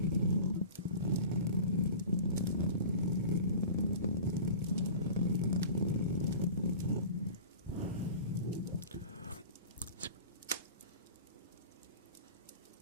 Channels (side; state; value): both; inverted; correlation -0.38